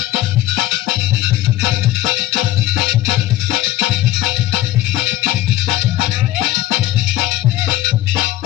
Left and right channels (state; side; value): quieter; right; 15.1 dB